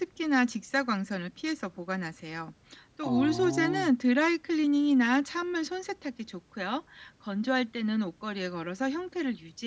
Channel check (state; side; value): identical; both; correlation 1.00